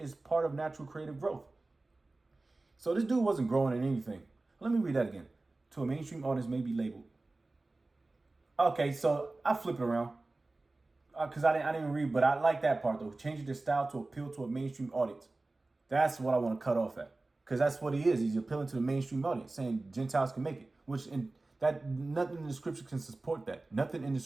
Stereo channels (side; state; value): left; quieter; 3.1 dB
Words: part of natural creative growth. So this dude wasn't growing in anything. Let me read that again. To a mainstream audience may be labeled. Okay, so I flip it around. Because I didn't even read, but I like that part though. Changing their style to appeal to a mainstream audience. That's what I want to cut off at. Because that's what he is. He's appealing to the mainstream audience, saying Gentiles can make it. Nothing in the scripture can support that. Nothing in the